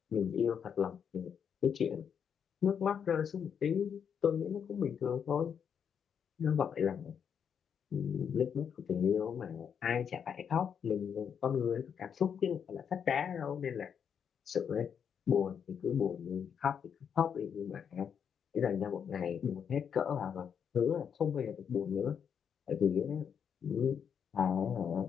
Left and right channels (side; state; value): right; quieter; 7.6 dB